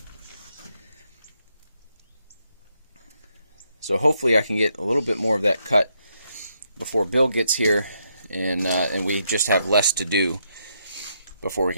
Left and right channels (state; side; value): inverted; both; correlation -0.78